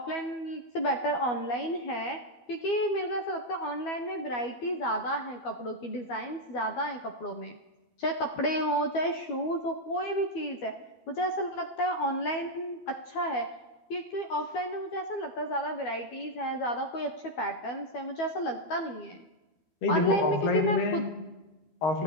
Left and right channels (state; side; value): late; right; 12 ms